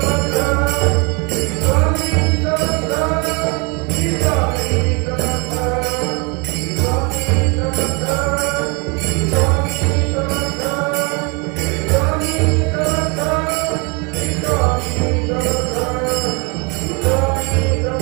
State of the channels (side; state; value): left; quieter; 31.3 dB